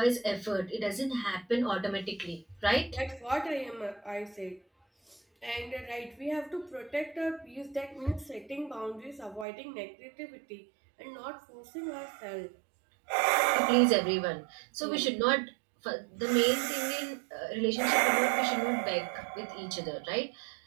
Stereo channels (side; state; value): left; drops out; at 9.5 s